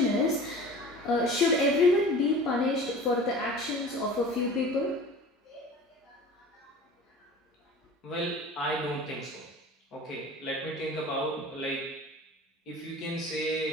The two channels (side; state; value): both; normal; correlation 0.40